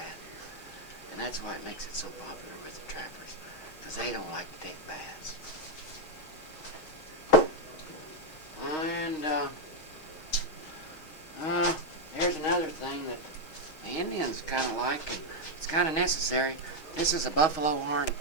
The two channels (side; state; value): right; late; 6.3 ms